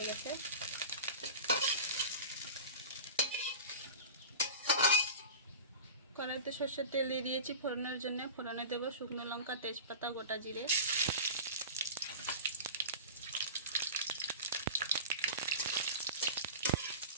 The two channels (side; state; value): both; inverted; correlation -0.32